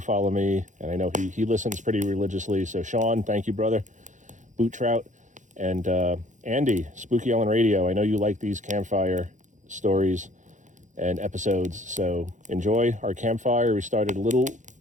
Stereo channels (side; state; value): left; late; 0.36 ms